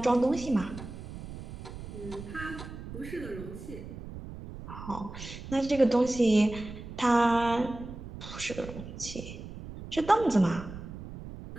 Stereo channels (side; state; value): right; noise; rumble, 11 dB below the sound